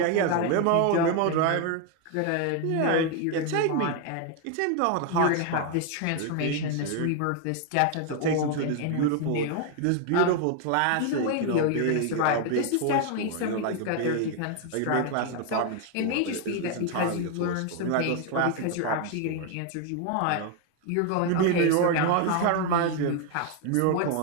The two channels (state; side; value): different; both; correlation 0.01